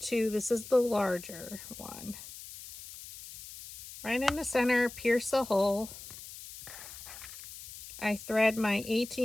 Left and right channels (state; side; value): noise; left; hiss, 14 dB below the sound